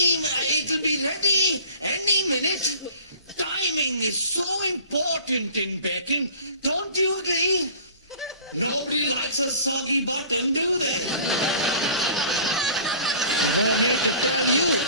be ready any minute. Timing is so important in baking. Don't you agree? Nobody likes a soggy bottom, do they? No need to tell you.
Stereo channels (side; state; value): both; inverted; correlation -0.45